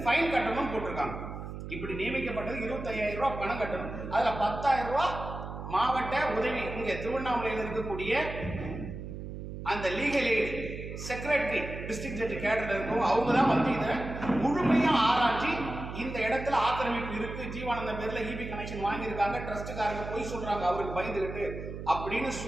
ஃபைன் கட்டணும் போட்டிருக்காங்க. இப்படி நியமிக்கப்பட்டது 25,000 ரூபாய் பணம் கட்டணும். அதுல 10,000 ரூபாய் மாவட்ட உதவி இங்க திருவண்ணாமலையில் இருக்கக்கூடிய அந்த legal aid secretary district judge கேடர்ல இருக்கும். அவங்க தான் வந்து இதை முழுமையா ஆராய்ச்சி இந்த இடத்துல ஆக்கிரமிப்பு இருக்கு, ஜீவானந்தம் பேர்ல இபி கனெக்ஷன் வாங்கியிருக்காங்க, ட்ரஸ்ட்டுக்காரங்க போய் சொல்றாங்க அவருக்கு பயந்துகிட்டு அப்படின்னு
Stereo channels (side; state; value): right; noise; hum, 8 dB below the sound